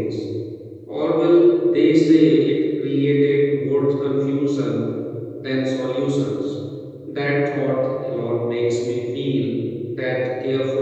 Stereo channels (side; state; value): both; identical; correlation 1.00